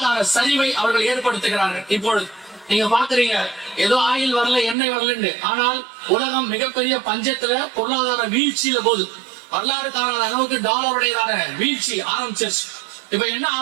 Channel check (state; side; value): drops out; left; at 4.8 s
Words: சரிவை அவர்கள் ஏற்படுத்துகிறார்கள். இப்பொழுது நீங்க பாக்குறீங்க, ஏதோ ஆயில் வரல, எண்ணெய் வரலன்னு, ஆனால் உலகம் மிகப்பெரிய பஞ்சத்துல பொருளாதார வீழ்ச்சியில போகுது. வரலாறு காணாத அளவுக்கு டாலருடையதான வீழ்ச்சி ஆரம்பிச்சிருச்சு. இப்ப என்ன